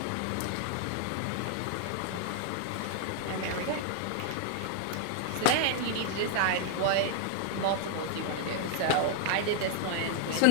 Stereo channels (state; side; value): different; both; correlation 0.00